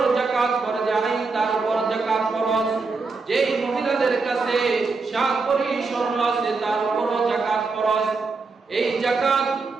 যাকাত ফরজ আইন, তার উপর যাকাত ফরজ। যেই মহিলাদের কাছে 7 ভরি স্বর্ণ আছে তার উপর যাকাত ফরজ। এই যাকাত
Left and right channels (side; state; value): left; quieter; 4.2 dB